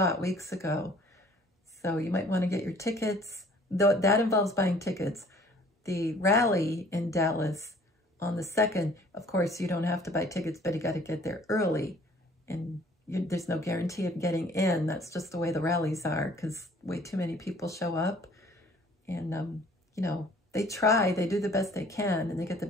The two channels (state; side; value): normal; both; correlation 0.55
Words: weeks ago. So you might want to get your tickets, though that involves buying tickets. The rally in Dallas on the 2nd, of course, you don't have to buy tickets, but you got to get there early. And there's no guarantee of getting in. That's just the way the rallies are, because way too many people show up. And, you know, they try, they do the best they can, and they get the